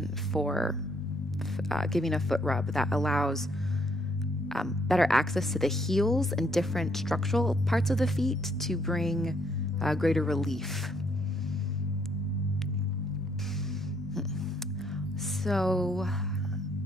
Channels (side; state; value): both; normal; correlation 0.69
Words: for giving a foot rub that allows better access to the heels and different structural parts of the feet to bring greater relief. So